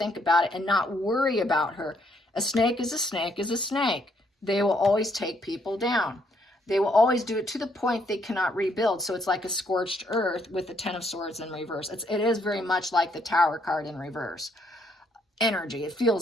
about it and not worry about her. A snake is a snake is a snake. They will always take people down. They will always do it to the point they cannot rebuild. So it's like a scorched earth with the 10 of Swords in reverse. It is very much like the Tower card in reverse. Energy, it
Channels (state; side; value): normal; both; correlation 0.71